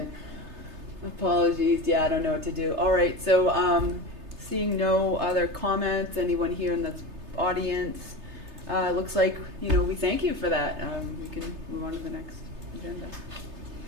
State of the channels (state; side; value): late; left; 3.3 ms